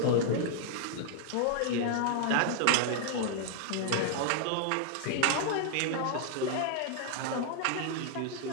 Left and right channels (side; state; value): both; different; correlation 0.00